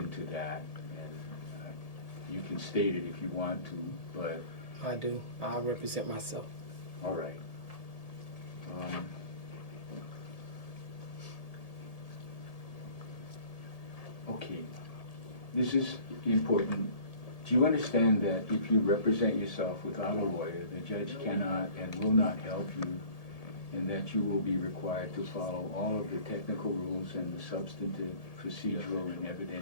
to that, and you can state it if you want to, but... I do. I represent myself. All right. Okay. This is important. Do you understand that if you represent yourself without a lawyer, the judge cannot and will not help you, and that you will be required to follow all of the technical rules and the substantive, procedural, and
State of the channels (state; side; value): late; right; 1.8 ms